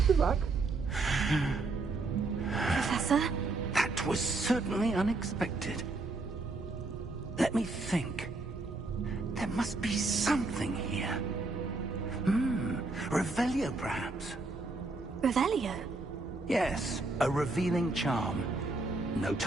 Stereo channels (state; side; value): quieter; left; 3.4 dB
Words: of luck. Professor? That was certainly unexpected. Let me think. There must be something here. Revelio, perhaps? Revelio? Yes, a revealing charm. No